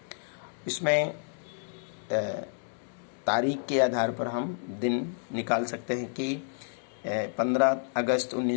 इसमें तारीख के आधार पर हम दिन निकाल सकते हैं कि 15 अगस्त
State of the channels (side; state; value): right; silent; digital silence